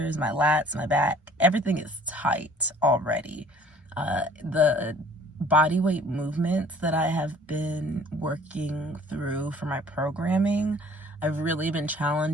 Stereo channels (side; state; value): both; normal; correlation 0.53